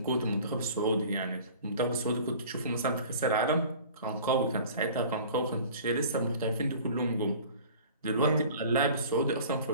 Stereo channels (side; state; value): both; inverted; correlation -0.45